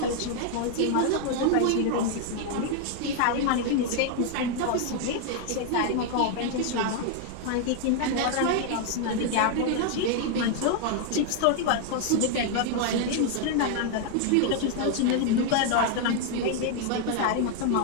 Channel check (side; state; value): both; different; correlation 0.00